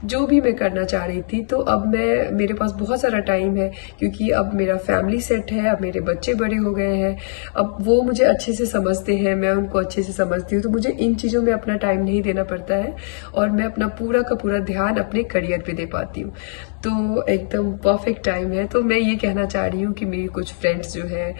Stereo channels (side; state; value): right; silent; digital silence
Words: जो भी मैं करना चाह रही थी, तो अब मेरे पास बहुत सारा टाइम है, क्योंकि अब मेरा फैमिली सेट है, अब मेरे बच्चे बड़े हो गए हैं। अब वो मुझे अच्छे से समझते हैं, मैं उनको अच्छे से समझती हूँ, तो मुझे इन चीज़ों में अपना टाइम नहीं देना पड़ता है, और मैं अपना पूरा का पूरा ध्यान अपने करियर पे दे पाती हूँ। तो एकदम परफेक्ट टाइम है। तो मैं ये कहना चाह रही हूँ कि मेरी कुछ फ्रेंड्स जो है,